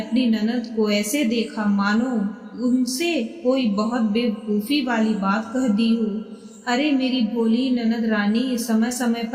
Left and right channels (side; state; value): both; identical; correlation 1.00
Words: ननद को ऐसे देखा मानो उनसे कोई बहुत बेवकूफ़ी वाली बात कह दी हो। अरे मेरी भोली ननद रानी, समय समय